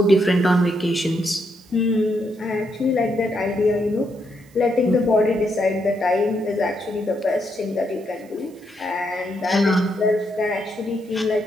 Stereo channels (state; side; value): noise; right; hiss, 29 dB below the sound